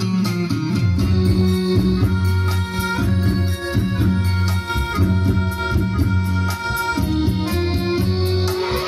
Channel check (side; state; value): both; identical; correlation 1.00